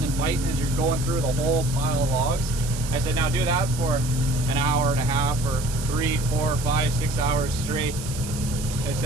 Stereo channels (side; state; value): right; noise; hiss, 11 dB below the sound